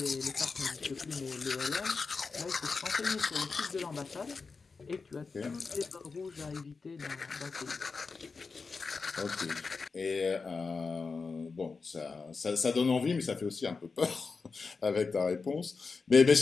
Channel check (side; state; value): right; quieter; 4.6 dB